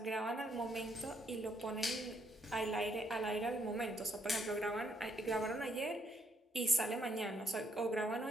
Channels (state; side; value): normal; both; correlation 0.72